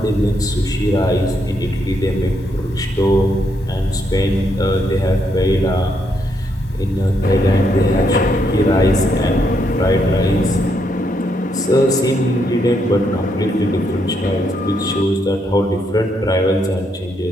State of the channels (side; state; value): both; normal; correlation 0.77